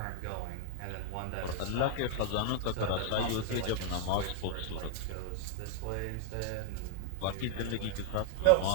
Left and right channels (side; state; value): both; different; correlation -0.01